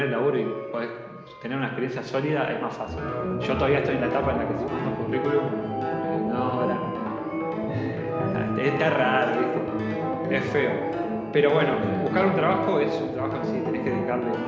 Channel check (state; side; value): identical; both; correlation 1.00